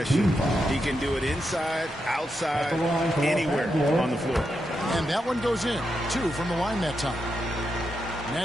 He can do it inside, outside, anywhere on the floor. And that one goes in. 2 from the line that time.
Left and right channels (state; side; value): normal; both; correlation 0.85